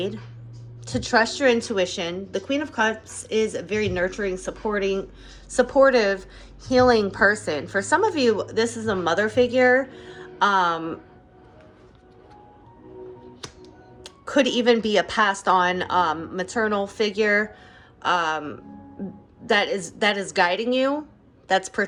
To trust your intuition. The Queen of Cups is a very nurturing, supportive, healing person. For some of you, this is a mother figure. Could even be a passed on maternal figure that is guiding you, that's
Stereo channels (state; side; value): identical; both; correlation 1.00